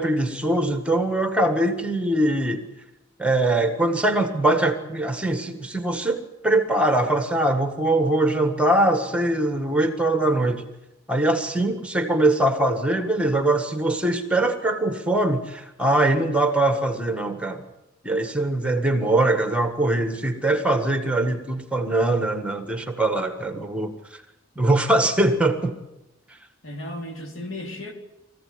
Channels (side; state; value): both; normal; correlation 0.60